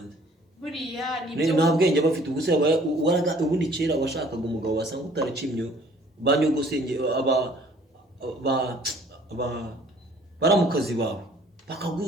Buriya nibyo nta bwenge bafite. Ubuse ubundi kera washakaga umugabo wasanga utaracimye, banyogosenge baramukazi bawe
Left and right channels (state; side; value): normal; both; correlation 0.55